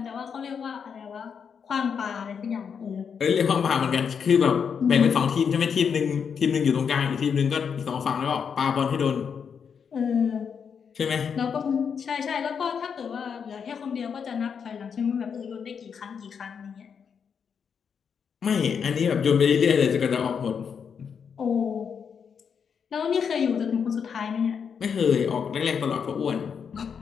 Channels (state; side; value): quieter; right; 6.8 dB